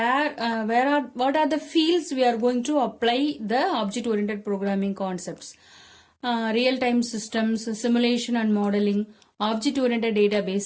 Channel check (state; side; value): identical; both; correlation 1.00